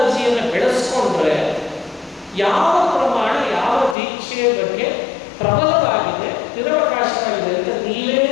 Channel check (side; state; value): right; drops out; at 4.0 s